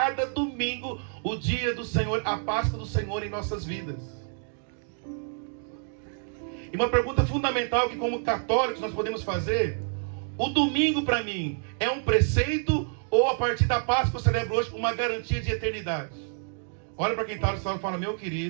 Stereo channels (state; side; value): silent; left; 56 dB below the other